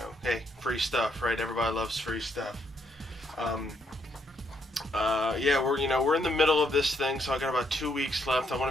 Hey, free stuff, right? Everybody loves free stuff. Yeah, we're in the middle of this thing, so I got about 2 weeks left. I want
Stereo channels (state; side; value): normal; both; correlation 0.74